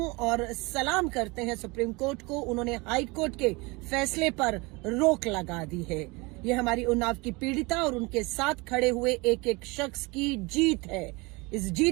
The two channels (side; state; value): left; quieter; 25.7 dB